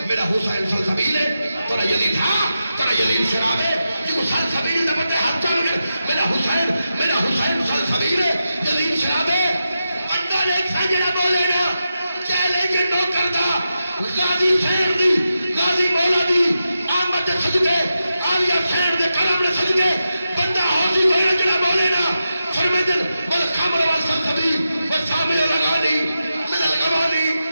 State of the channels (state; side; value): inverted; both; correlation -0.89